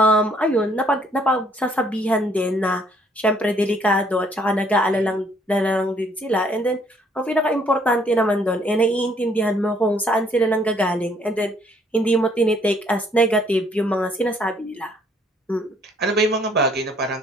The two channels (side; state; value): both; normal; correlation 0.64